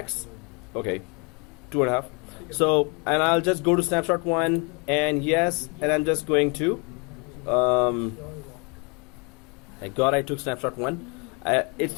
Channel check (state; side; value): quieter; right; 32.2 dB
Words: Okay, 2.5. So, and I'll just go to snapshot 1 and yes, and I'm just going to thank God I took snapshot 1. It